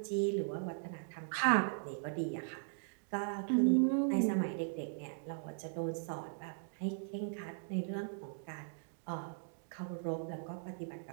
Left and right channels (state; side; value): silent; left; digital silence